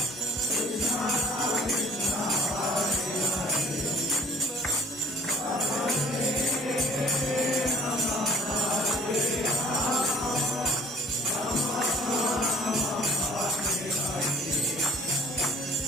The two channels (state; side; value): normal; both; correlation 0.52